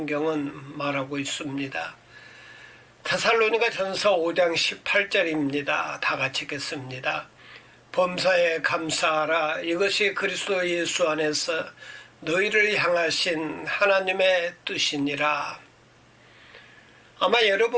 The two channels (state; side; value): identical; both; correlation 1.00